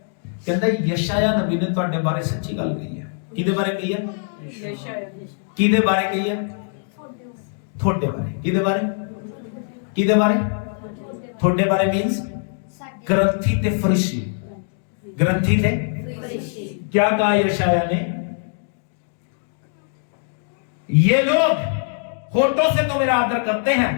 यशायाह नबी ने ਤੁਹਾਡੇ बारे सच्ची गल कही है। किदे बारे कही है? किदे बारे कही है? ਤੁਹਾਡੇ बारे। किदे बारे? किदे बारे? ਤੁਹਾਡੇ बारे मींस ग्रंथी थे फरीसी। ग्रंथी थे फरीसी। क्या कहा यशायाह ने? ये लोग होठों से तो मेरा आदर करते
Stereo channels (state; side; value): silent; right; digital silence